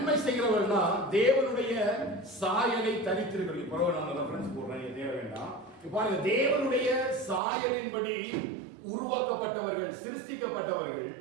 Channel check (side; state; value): left; drops out; at 7.4 s